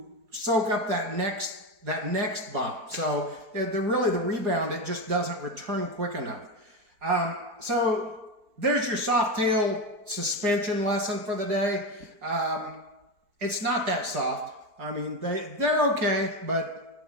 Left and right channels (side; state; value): left; late; 4.5 ms